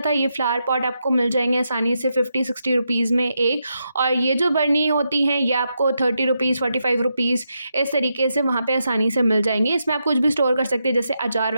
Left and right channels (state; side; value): inverted; both; correlation -0.84